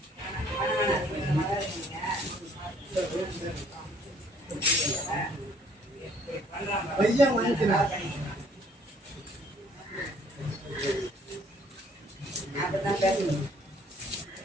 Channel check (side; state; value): both; normal; correlation 0.60